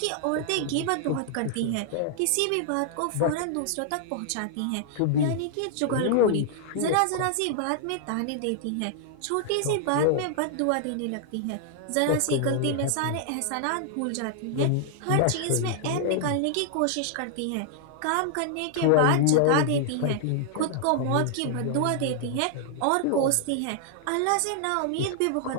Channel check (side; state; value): both; different; correlation -0.01